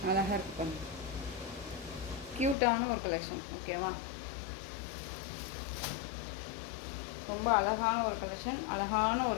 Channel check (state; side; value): drops out; right; at 2.6 s